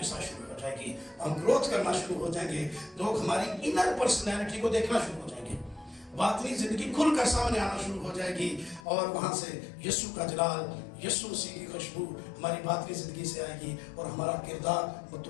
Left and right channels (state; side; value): drops out; right; at 8.8 s